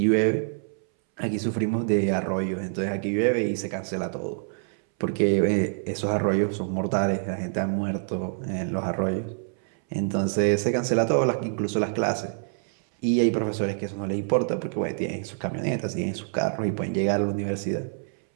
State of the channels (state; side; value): silent; left; 61 dB below the other